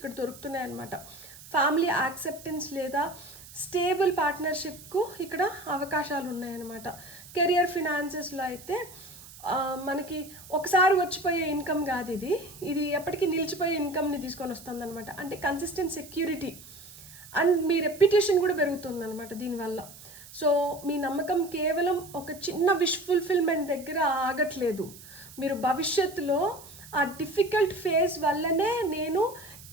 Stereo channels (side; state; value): right; noise; hiss, 18 dB below the sound